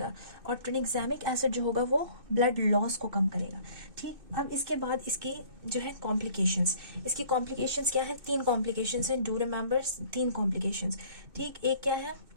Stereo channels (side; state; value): left; late; 2.6 ms